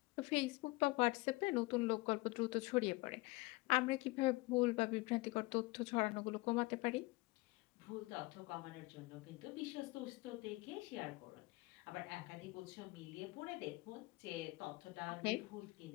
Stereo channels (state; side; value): quieter; right; 23.0 dB